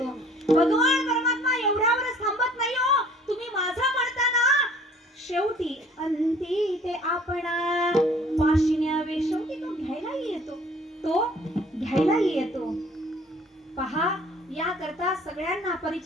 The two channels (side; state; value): both; normal; correlation 0.53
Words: भगवान परमात्मा एवढ्यावरच थांबत नाही हो. तुम्ही माझं म्हणताना शेवटी अंती ते आपणा पाशिन्यावे. शेवटी तो घ्यायलाही येतो, तो घ्यायलाही येतो. पहा या करता सगळ्यांना